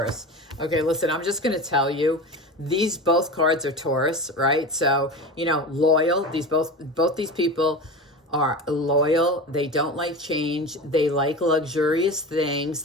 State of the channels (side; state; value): both; normal; correlation 0.28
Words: Okay, listen, I'm just going to tell you, these both cards are Taurus, right? So, you know, loyal. Both these people are loyal. They don't like change. They like luxurious things.